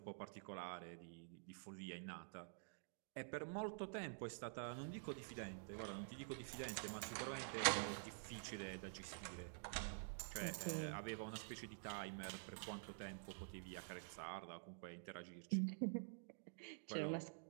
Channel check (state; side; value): silent; left; digital silence